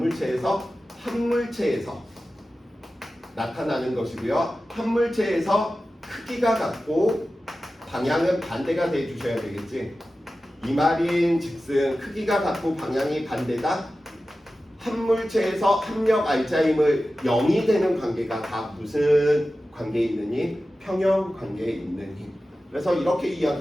한 물체에서 나타나는 것이고요. 한 물체에서 크기가 같고 방향은 반대가 돼 주셔야 되겠지. 이 말인즉슨 크기가 같고 방향이 반대다. 한 물체에서 합력 알자임을 0이 되는 관계가 다 무슨 관계에 있는 힘? 평형 관계에 있는 힘. 그래서 이렇게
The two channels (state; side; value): normal; both; correlation 0.94